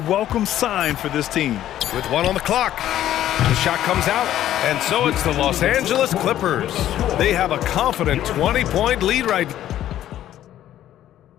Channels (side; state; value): right; quieter; 12.3 dB